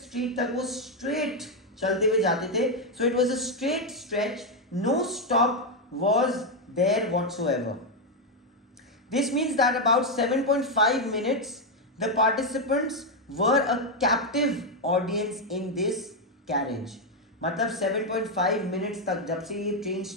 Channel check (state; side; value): normal; both; correlation 0.04